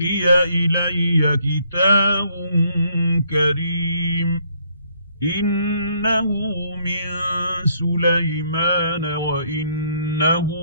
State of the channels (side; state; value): both; inverted; correlation -0.68